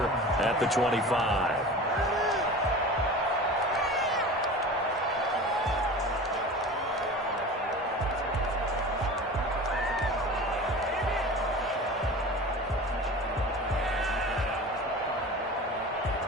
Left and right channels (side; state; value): both; normal; correlation 0.35